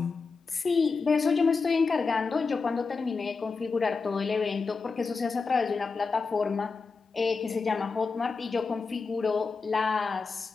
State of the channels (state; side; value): quieter; right; 4.6 dB